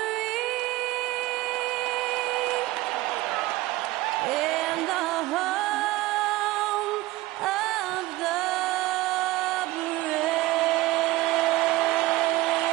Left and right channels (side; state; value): left; quieter; 18.4 dB